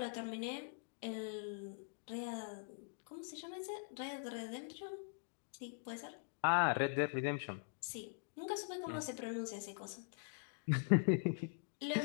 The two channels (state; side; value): silent; right; digital silence